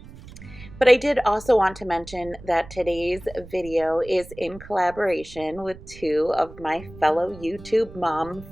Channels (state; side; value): noise; right; rumble, 18 dB below the sound